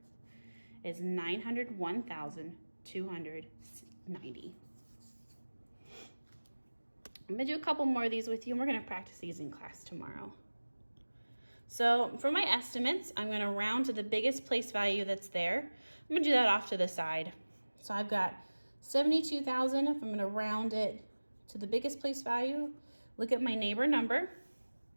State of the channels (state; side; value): inverted; both; correlation -1.00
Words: is 901,290. I'm going to do a couple more of these with you, and we're going to practice these in class tomorrow. So for my estimates, I'm going to round to the biggest place value that's there. I'm going to do that off to the side. So I've got 72,000. If I'm going to round it to the biggest place value, look at my neighbor number.